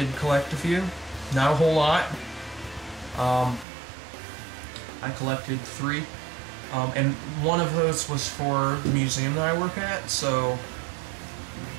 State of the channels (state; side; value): drops out; left; at 3.7 s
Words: collect a few. Not a whole lot. I collected 3. And one of those was for the museum that I work at, so